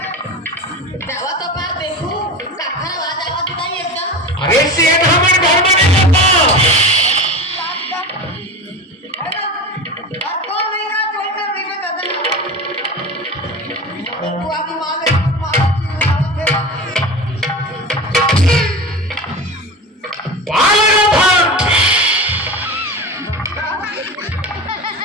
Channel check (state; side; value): normal; both; correlation 0.29